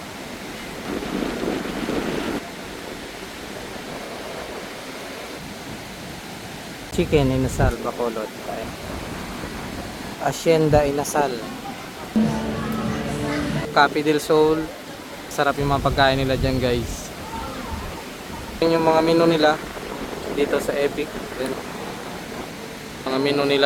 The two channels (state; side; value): identical; both; correlation 1.00